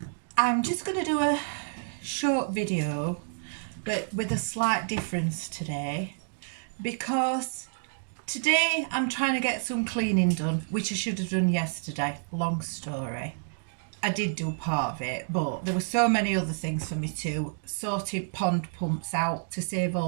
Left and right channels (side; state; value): left; silent; digital silence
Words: I'm just going to do a short video, but with a slight difference today, because today I'm trying to get some cleaning done, which I should have done yesterday. Long story. I did do part of it, but there were so many other things for me to sorted pond pumps out to save